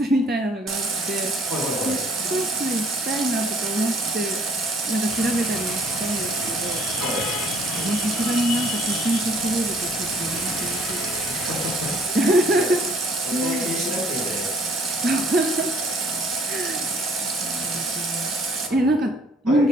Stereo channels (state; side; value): normal; both; correlation 0.60